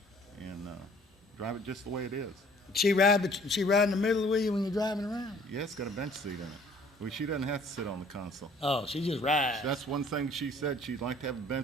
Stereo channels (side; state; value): both; normal; correlation 0.55